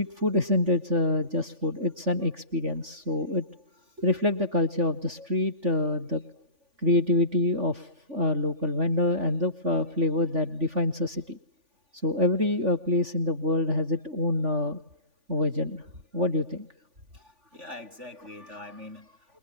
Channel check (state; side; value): late; left; 3.5 ms